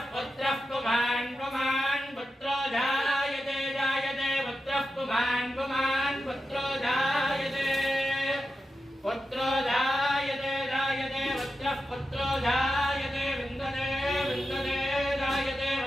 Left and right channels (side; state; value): both; normal; correlation 0.90